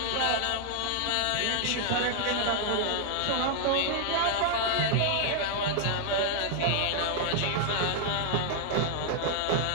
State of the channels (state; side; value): different; both; correlation 0.00